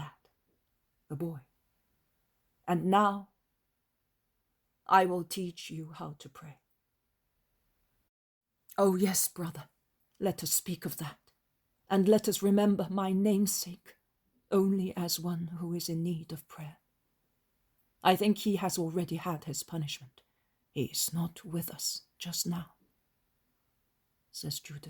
the boy. And now I will teach you how to pray. Oh yes, brother, let us speak of that, and let us remember my namesake only as one who is in need of prayer. I think he has already had his punishment. He is not with us just now, says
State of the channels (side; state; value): both; identical; correlation 1.00